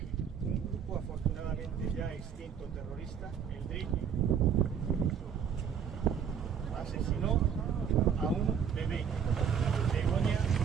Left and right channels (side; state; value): left; quieter; 7.5 dB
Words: un grupo afortunadamente ya extinto terrorista, el DRIP, asesinó a un bebé, Begoña